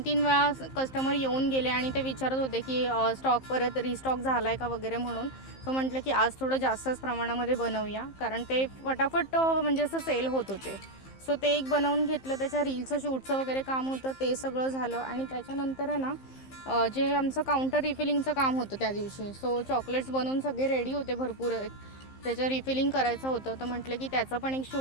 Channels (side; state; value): right; late; 15 ms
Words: वेळा कस्टमर येऊन गेले आणि ते विचारत होते की स्टॉक परत रिस्टॉक झाला आहे का वगैरे म्हणून. सो म्हटलं की आज थोडं जास्तच प्रमाणामध्ये बनवूया, कारण ते फटाफट म्हणजे असं सेल होत होते. सो ते एक बनवून घेतलं. त्याच्या रीलचं शूटचं वगैरे काम होतं, ते सगळं झालं. आणि त्याच्यानंतर आहे ना जे आमचं काउंटर रिफिलिंगचं काम होतं त्या दिवशी. सो चॉकलेट्स बनवून सगळे रेडी होते भरपूर. त्याचं रिफिलिंग करायचं होतं, तर म्हटलं की त्याचं पण एक